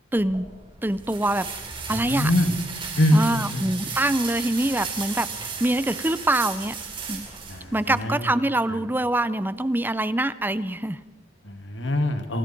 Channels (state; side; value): normal; both; correlation 0.76